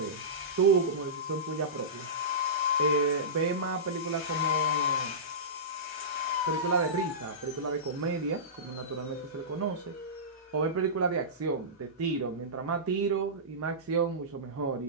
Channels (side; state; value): both; normal; correlation -0.19